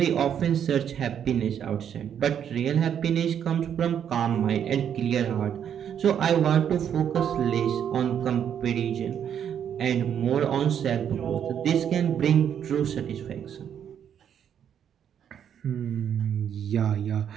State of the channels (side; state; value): left; quieter; 8.8 dB